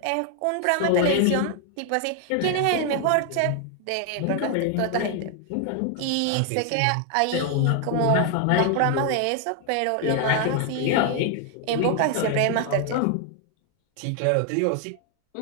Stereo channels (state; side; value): different; both; correlation 0.00